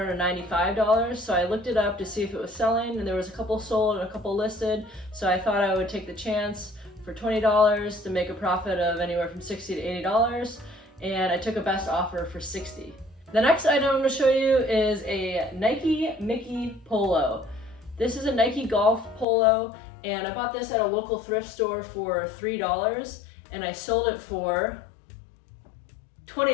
so I looked it up to see if it was selling, and there was a couple sold and a couple listed, so I thought I would take the chance for $20 to make a profit of anywhere from $60 to $80, and I took a best offer for $60. The next item I'm going to show you is a Nike Mickey polo. This is a Nike golf polo, and I bought this at a local thrift store for $3, and I sold it for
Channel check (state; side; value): drops out; right; at 19.2 s